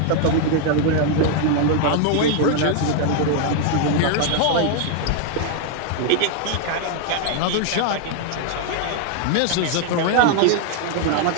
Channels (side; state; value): both; different; correlation 0.00